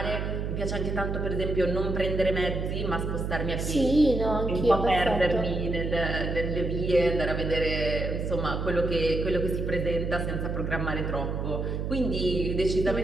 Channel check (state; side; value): noise; right; hum, 2 dB below the sound